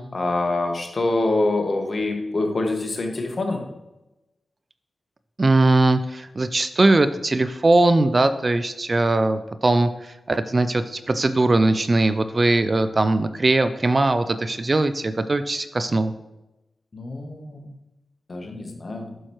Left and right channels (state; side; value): normal; both; correlation 0.96